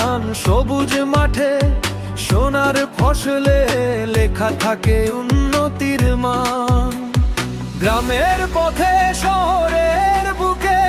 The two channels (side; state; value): both; identical; correlation 1.00